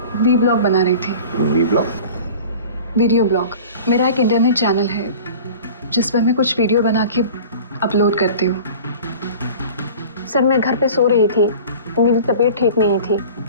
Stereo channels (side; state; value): both; inverted; correlation -0.41